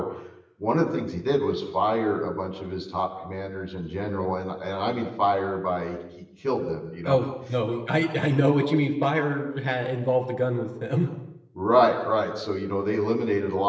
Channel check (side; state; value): both; identical; correlation 1.00